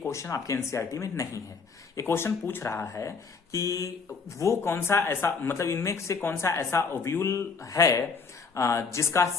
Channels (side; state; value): right; quieter; 5.0 dB